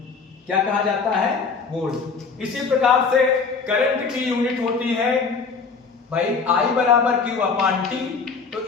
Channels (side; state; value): right; quieter; 5.0 dB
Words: क्या कहा जाता है? वोल्ट। इसी प्रकार से करंट की यूनिट होती है भाई I बराबर Q/T, तो